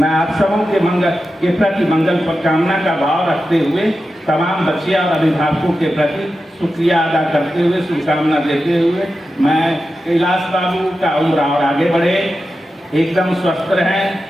आप सबों के मंगल के प्रति मंगल कामना का भाव रखते हुए तमाम बच्चे और अभिभावकों के प्रति शुक्रिया अदा करते हुए, शुभकामना देते हुए, मैं कैलाश बाबू का उम्र और आगे बढ़े, एकदम स्वस्थ रहें,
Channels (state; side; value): normal; both; correlation 0.91